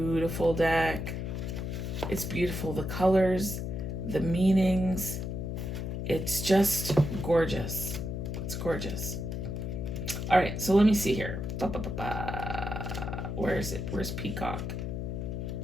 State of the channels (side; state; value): left; noise; hum, 4 dB below the sound